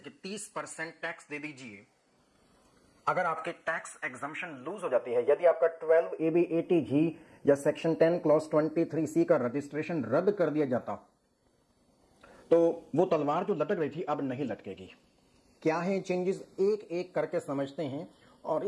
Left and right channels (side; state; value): both; identical; correlation 1.00